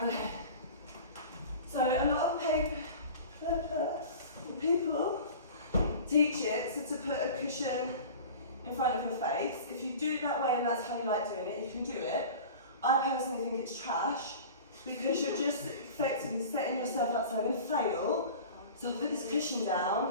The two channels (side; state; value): both; inverted; correlation -0.38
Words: So a lot of people teach it so to put a cushion in front of your face. If you do it that way and that's how you like doing it, you can do it. I personally think it's trash because you're just effectively setting yourself up, so I'm going to fail. So I'll put this cushion